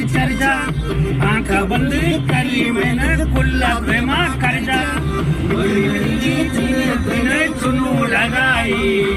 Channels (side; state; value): both; identical; correlation 1.00